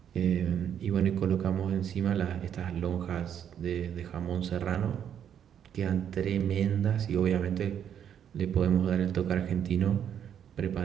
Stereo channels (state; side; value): quieter; left; 9.0 dB